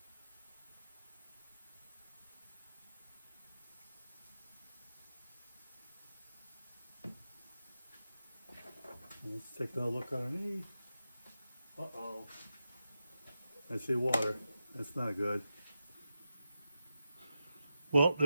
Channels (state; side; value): inverted; both; correlation -0.90